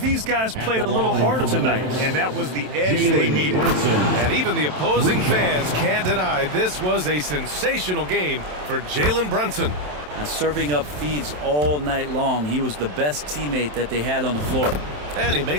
guys played a little harder tonight, and that was the edge they needed. And even the opposing fans can't deny this was a sensational game for Jalen Brunson. Now, serving up feeds all night long. He was the best teammate that they had on the floor. And he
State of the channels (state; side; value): late; left; 27 ms